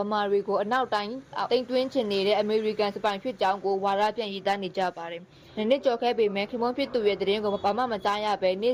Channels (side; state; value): both; identical; correlation 1.00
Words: မာတွေကိုအနောက်တိုင်းတိမ်တွင်းချင်နေတဲ့အမေရိကန်စပိုင်ဖြစ်ကြောင်းကိုဝါဒပြန်ရေးသားနေကြပါတယ်။နှစ်ကြော်ခဲ့ပေမဲ့ခင်မွန်းဖြစ်သူရဲ့သတင်းကိုဘာမှမကြားရဘဲနေ့